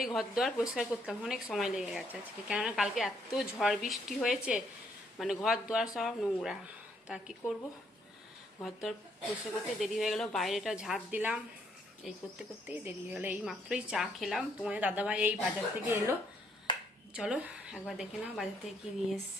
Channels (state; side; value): normal; both; correlation 0.71